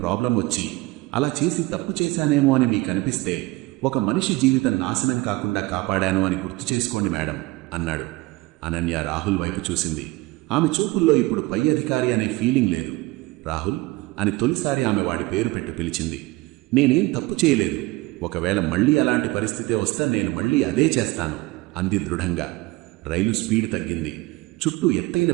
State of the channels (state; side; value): quieter; left; 21.4 dB